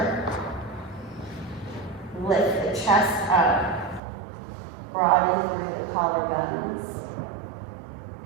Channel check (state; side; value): drops out; left; at 4.0 s